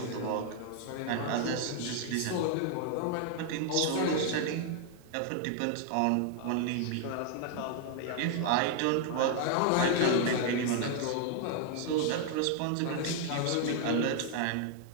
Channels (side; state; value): both; different; correlation 0.00